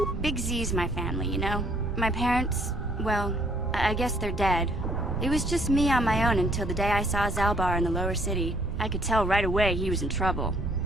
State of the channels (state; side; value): noise; right; rumble, 5 dB below the sound